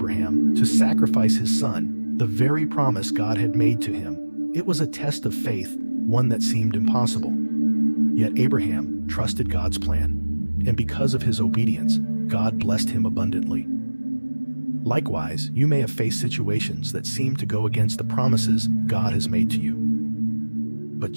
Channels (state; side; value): inverted; both; correlation -1.00